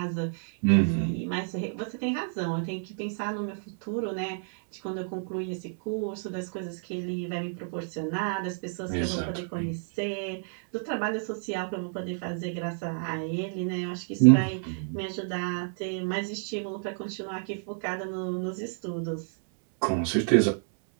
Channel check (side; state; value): left; silent; 58 dB below the other